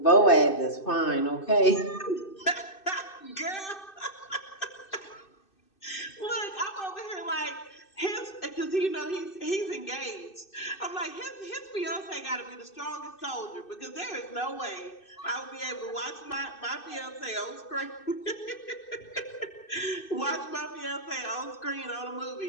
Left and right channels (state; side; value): late; right; 2.6 ms